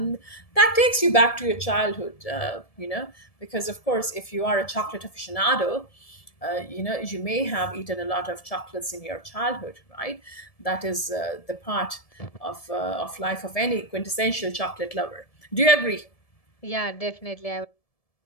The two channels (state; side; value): late; right; 1.7 ms